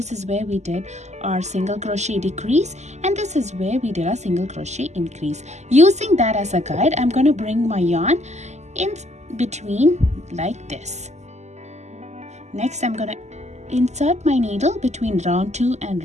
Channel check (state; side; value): late; left; 0.33 ms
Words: is where we did our single crochet decrease and this is where we did our single crochet increase. Using that as a guide, I'm gonna bring my yarn in between like this. Next, I'm gonna insert my needle between round 2 and